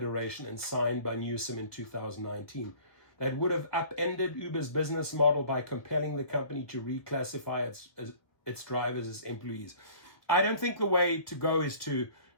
and signed by Newsom in 2019. that would have upended Uber's business model by compelling the company to reclassify its drivers as employees. I don't think the way to go is to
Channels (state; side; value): late; right; 1.6 ms